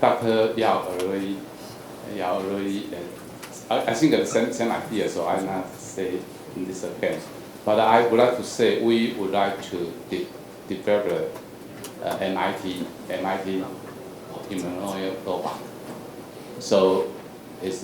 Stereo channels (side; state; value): both; identical; correlation 1.00